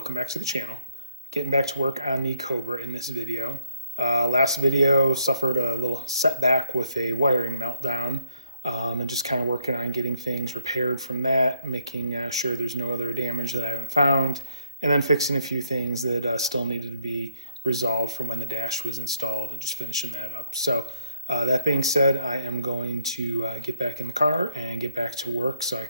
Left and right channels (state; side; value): inverted; both; correlation -0.71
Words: back to the channel. Getting back to work on the Cobra in this video. Last video suffered a little setback with a wiring meltdown and just kind of working on getting things repaired from that, making sure there's no other damage that I haven't found, and then fixing a few things that still needed to be resolved from when the dash was installed and just finishing that up. So that being said, I am going to get back in the car and get back to work so I